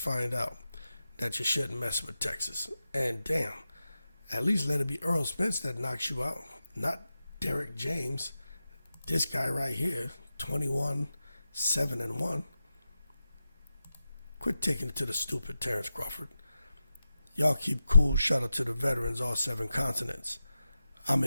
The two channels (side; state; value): both; inverted; correlation -0.91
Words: out that you shouldn't mess with Texas. And damn, at least let it be Errol Spence that knocks you out, not Derrick James. This guy right here, 21-7-1. Quit taking it to the stupid, Terence Crawford. Y'all keep cool. Shout out to the veterans, all 7 continents. I'm